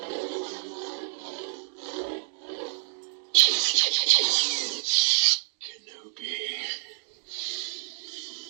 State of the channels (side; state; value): left; silent; digital silence